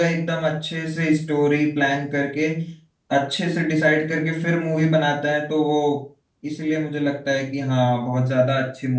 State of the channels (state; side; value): identical; both; correlation 1.00